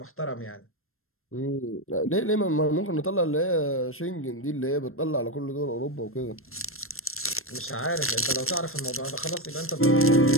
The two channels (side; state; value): right; late; 0.62 ms